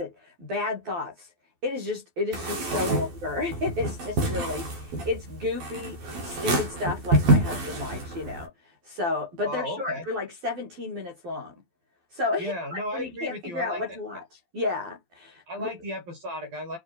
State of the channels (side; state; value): left; late; 12 ms